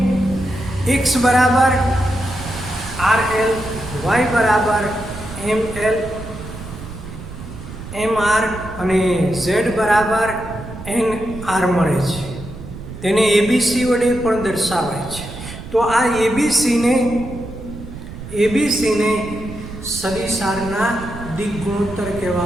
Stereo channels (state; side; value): noise; right; rumble, 12 dB below the sound